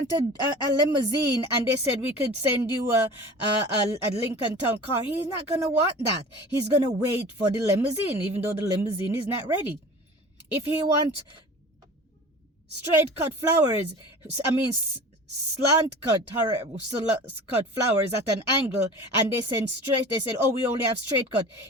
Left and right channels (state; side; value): normal; both; correlation 0.39